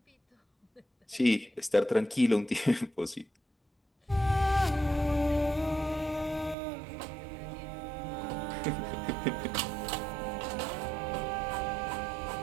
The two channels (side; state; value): left; drops out; at 6.6 s